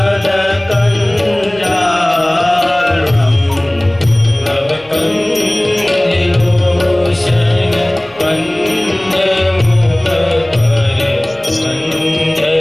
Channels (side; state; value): left; noise; hum, 28 dB below the sound